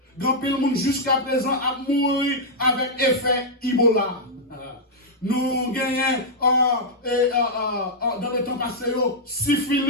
grand pile le monde jusqu'à présent a mouru avec effet Ebola. Nous gagnons dans le temps passé,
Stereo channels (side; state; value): both; normal; correlation -0.06